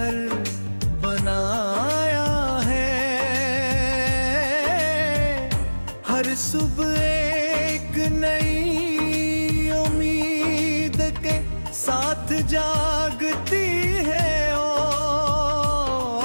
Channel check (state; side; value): inverted; both; correlation -1.00